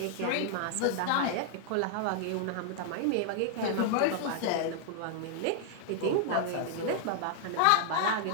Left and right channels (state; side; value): different; both; correlation -0.01